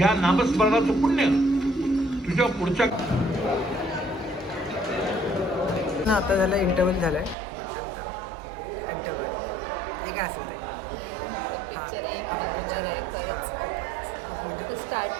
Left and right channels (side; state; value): left; drops out; at 7.4 s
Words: नामस्मरणाचं पुण्य तुझ्या पुढच्या आता झालं इंटरव्हल झालाय, नंतर इंटरव्हल हे काय असेल ते. हा आपण पिक्चर खूप म्हणजे